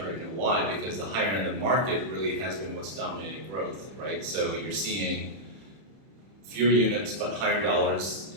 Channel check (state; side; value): late; left; 31 ms